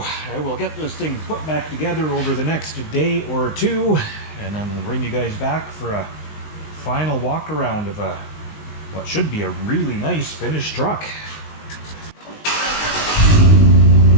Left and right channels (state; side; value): late; right; 19 ms